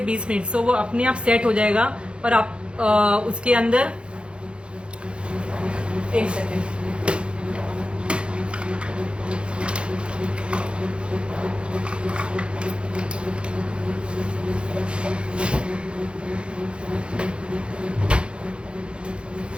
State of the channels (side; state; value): left; late; 0.056 ms